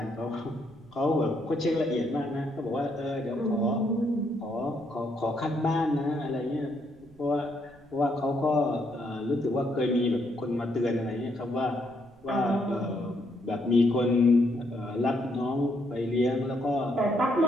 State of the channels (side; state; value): right; noise; rumble, 26 dB below the sound